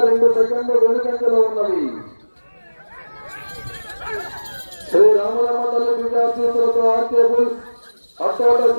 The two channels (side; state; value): both; inverted; correlation -1.00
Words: 2 సెకండ్లు వెనుకంజలో ఉన్నది. శ్రీ రామలమ్మ తల్లి విద్యార్థులతో ఆర్కే బుల్స్ అట్టోట